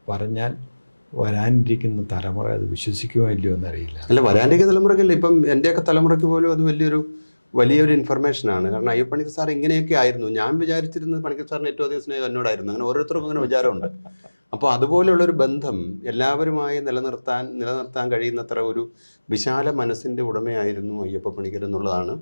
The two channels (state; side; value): inverted; both; correlation -1.00